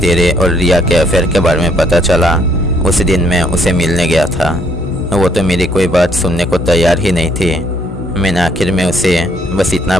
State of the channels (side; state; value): both; normal; correlation 0.67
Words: और रिया के अफेयर के बारे में पता चला उस दिन मैं उसे मिलने गया था। वो तो मेरी कोई बात सुनने को तैयार ही नहीं थी। मैंने आखिर में उसे बस इतना